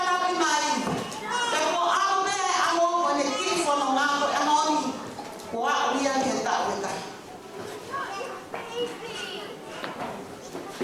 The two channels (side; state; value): both; identical; correlation 1.00